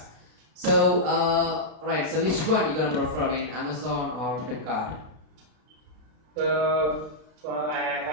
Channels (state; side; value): late; left; 32 ms